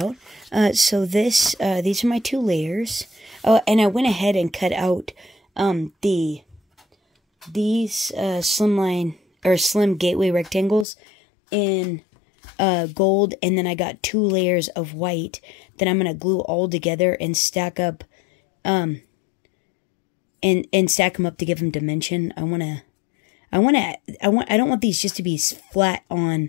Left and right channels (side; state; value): right; drops out; at 10.9 s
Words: So these are my 2 layers. Oh, and I went ahead and cut out these slimline or slim gateway rectangles in gold, and then I got 2 layers of white that I'm gonna glue all together and stack up, and stack them up to give them dimension. I don't want these just to be flat on